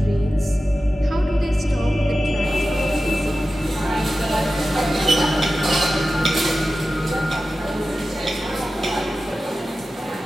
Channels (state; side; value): normal; both; correlation 0.94